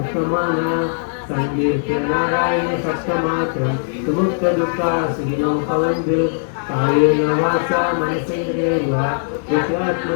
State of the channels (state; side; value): silent; right; 62 dB below the other